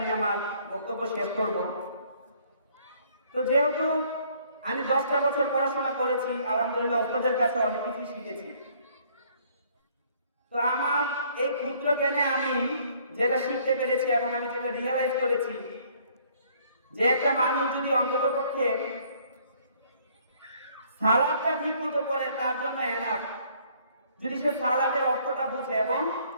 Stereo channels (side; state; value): both; inverted; correlation -0.62